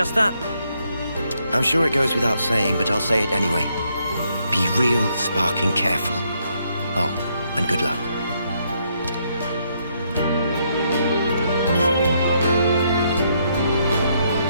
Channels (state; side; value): inverted; both; correlation -0.74